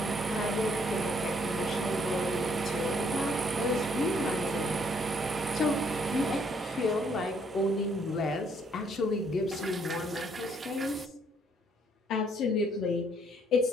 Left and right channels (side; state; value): both; normal; correlation 0.67